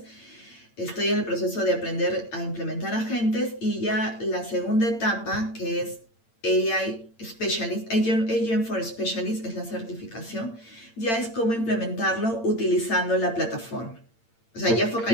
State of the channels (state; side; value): late; right; 8.8 ms